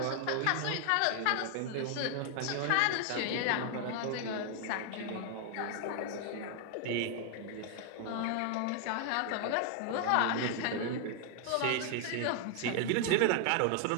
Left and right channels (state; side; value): different; both; correlation 0.00